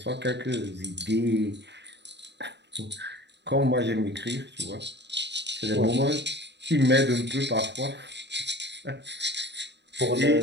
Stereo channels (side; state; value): left; late; 0.51 ms